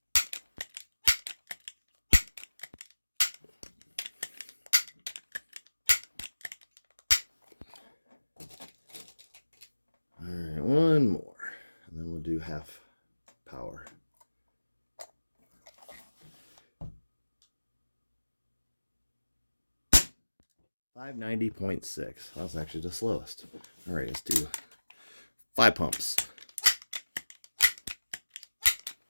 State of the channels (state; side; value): inverted; both; correlation -1.00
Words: All right, 1 more, and then we'll do half power. 590.6. That's actually the slowest. All right, let's do 5 pumps.